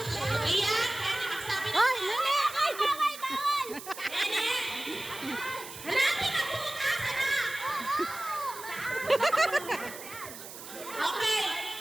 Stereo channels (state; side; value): noise; right; hiss, 13 dB below the sound